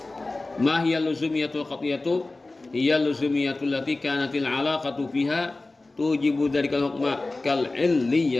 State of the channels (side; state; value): right; quieter; 3.1 dB